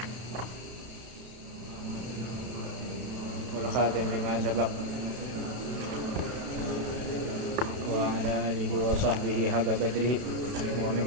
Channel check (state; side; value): late; left; 32 ms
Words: Wal khatim lima sabaq wa ala alihi wa sahbihi haqqa qadrihi wa